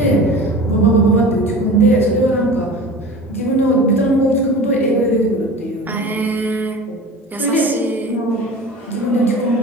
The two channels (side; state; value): both; normal; correlation 0.36